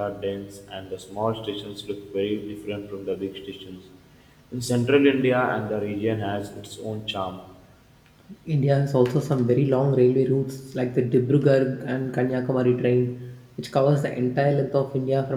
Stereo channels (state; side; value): identical; both; correlation 1.00